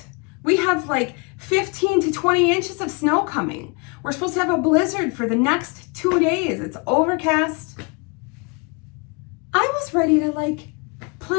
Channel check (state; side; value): quieter; right; 31.1 dB